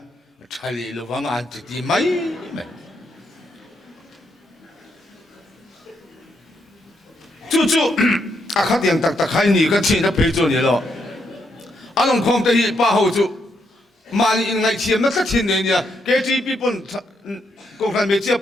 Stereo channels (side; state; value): both; normal; correlation 0.78